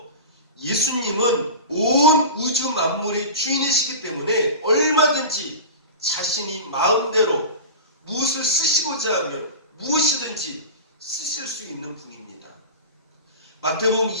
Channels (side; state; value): both; inverted; correlation -0.31